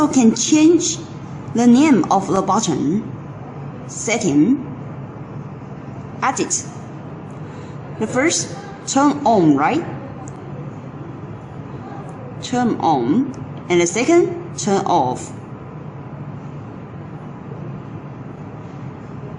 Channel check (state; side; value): identical; both; correlation 1.00